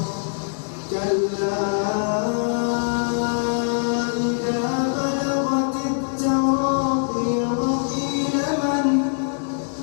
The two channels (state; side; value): silent; right; 64 dB below the other